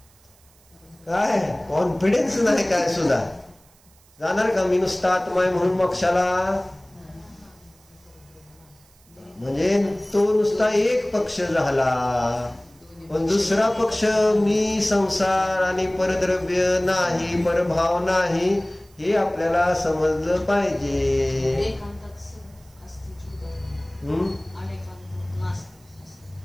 काय कॉन्फिडन्स नाही काय सुद्धा जाणार का? मी नुसता आत्मा आहे म्हणून मोक्षाला? म्हणजे तो नुसता एक पक्ष झाला, पण दुसरा पक्ष मी संसार आणि परद्रव्य नाही, परभाव नाही, हे आपल्याला समजलं पाहिजे.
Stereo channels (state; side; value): noise; right; hiss, 30 dB below the sound